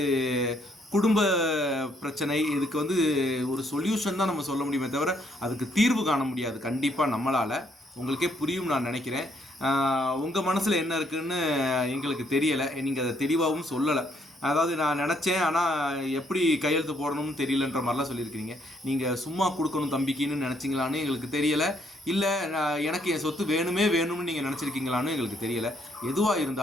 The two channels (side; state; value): both; normal; correlation 0.70